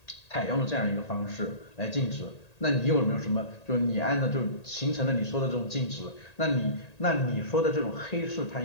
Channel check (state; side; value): late; right; 1.8 ms